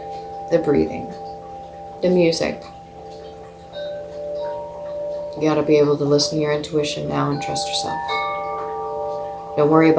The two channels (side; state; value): both; identical; correlation 1.00